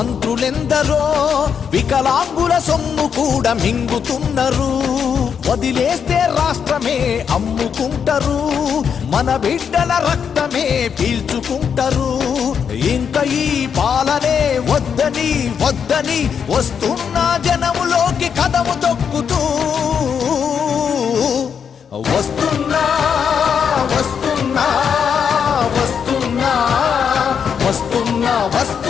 వికలాంగుల సొమ్ము కూడా మింగుతున్నారు వదిలేస్తే రాష్ట్రమే అమ్ముకుంటారు మన బిడ్డల రక్తమే పీల్చుకుంటారు ఇంక ఈ పాలనే వద్దని వద్దని వస్తున్న జనములోకి కదము తొక్కుతూ వస్తున్నా వస్తున్నా వస్తున్నా వస్తున్నా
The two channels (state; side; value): quieter; right; 7.2 dB